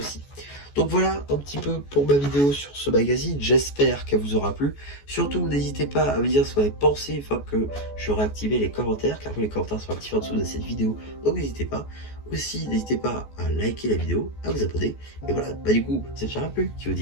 Donc voilà un petit peu pour ma vidéo sur ce magazine, j'espère qu'elle vous aura plu. Surtout n'hésitez pas à me dire ce que vous avez pensé une fois que j'aurai activé les commentaires, car les commentaires sont actifs en dessous de cette vidéo, donc n'hésitez pas. Aussi n'hésitez pas à liker la vidéo, à vous abonner, et voilà, du coup, ça ne sera plus, qui vous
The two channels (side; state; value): right; late; 14 ms